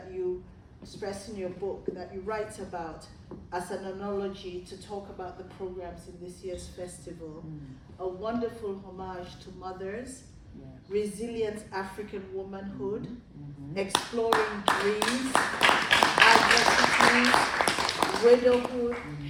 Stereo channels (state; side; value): identical; both; correlation 1.00